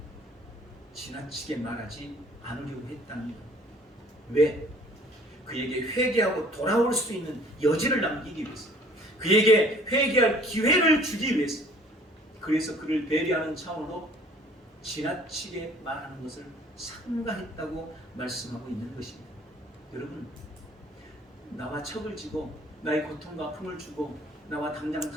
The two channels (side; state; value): both; normal; correlation 0.54